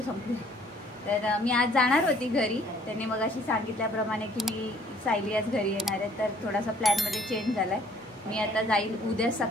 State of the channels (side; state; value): both; normal; correlation 0.58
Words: संपले. तर मी आज जाणार होती घरी. त्यांनी मग अशी सांगितल्याप्रमाणे की मी सायली आज घरी येणार आहे. तर थोडासा प्लॅनमध्ये चेंज झाला आहे. मी आता जाईल उद्या